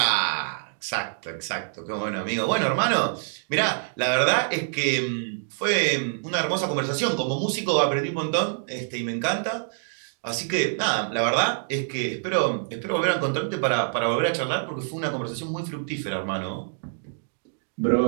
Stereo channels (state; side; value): silent; left; digital silence